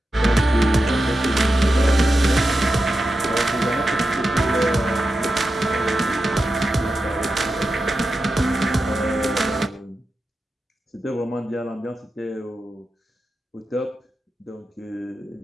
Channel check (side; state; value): both; normal; correlation 0.90